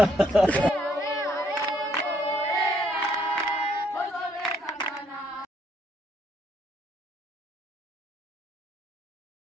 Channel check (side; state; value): both; normal; correlation 0.69